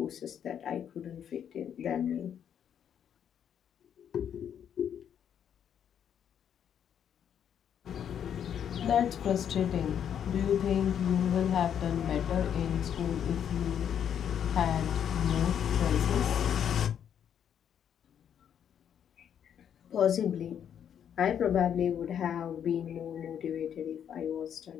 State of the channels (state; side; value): quieter; right; 8.9 dB